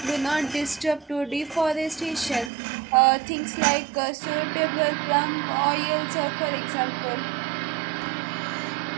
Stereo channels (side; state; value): left; drops out; at 2.5 s